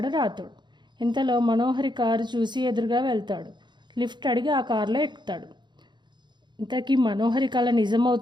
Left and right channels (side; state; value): left; late; 0.22 ms